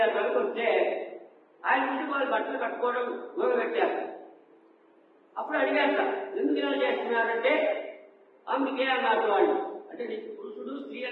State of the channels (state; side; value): identical; both; correlation 1.00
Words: వెనక్కి వస్తే ఆయన నుంచి వాళ్ళు బట్టలు కట్టుకోవడం మొదలుపెట్టారు. అప్పుడు అడిగాక ఎందుకు ఇలా చేస్తున్నారంటే అందుకే అన్నారు వాళ్ళు. అంటే నీకు పురుషుడు స్త్రీ